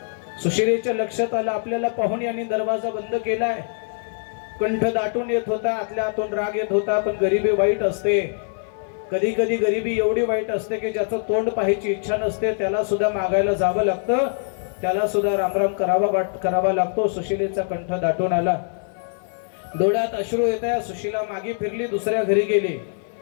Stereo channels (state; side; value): silent; right; digital silence